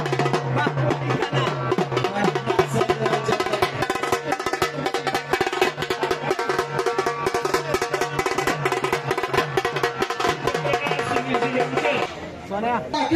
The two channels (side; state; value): both; identical; correlation 1.00